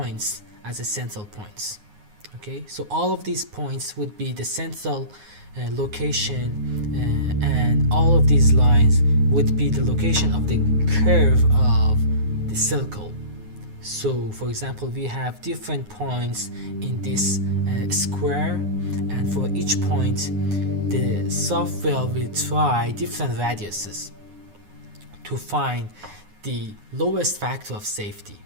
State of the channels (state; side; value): late; left; 9.6 ms